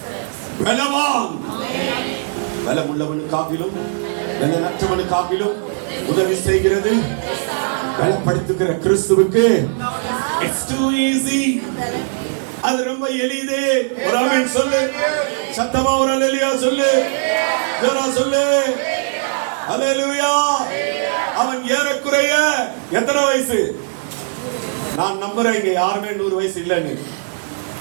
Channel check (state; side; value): silent; left; digital silence